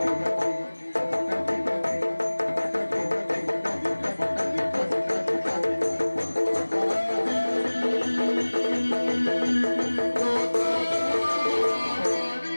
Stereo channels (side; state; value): both; inverted; correlation -1.00